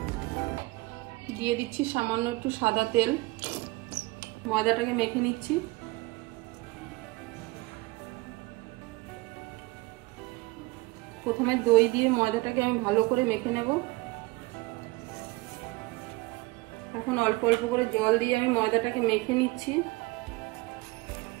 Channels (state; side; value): quieter; left; 22.8 dB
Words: দিয়ে দিচ্ছি সামান্য একটু সাদা তেল। ময়দাটাকে মেখে নিচ্ছি। প্রথমে দই দিয়ে ময়দাটাকে আমি ভালো করে মেখে নেব। এখন অল্প অল্প করে জল দিয়ে আমি ময়দাটাকে মেখে নিচ্ছি।